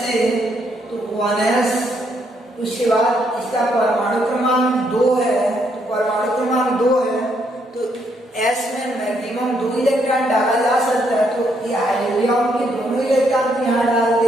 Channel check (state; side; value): normal; both; correlation 0.74